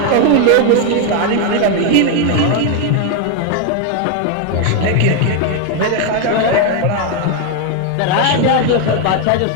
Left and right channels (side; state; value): both; different; correlation 0.01